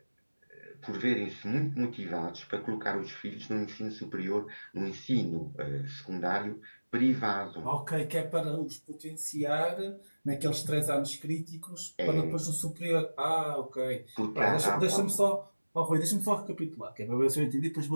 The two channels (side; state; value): both; inverted; correlation -1.00